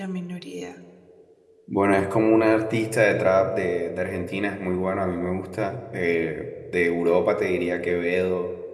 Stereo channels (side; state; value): both; identical; correlation 1.00